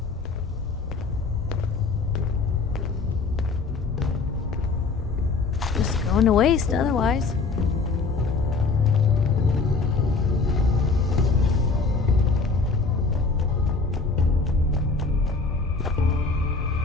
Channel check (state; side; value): quieter; right; 4.2 dB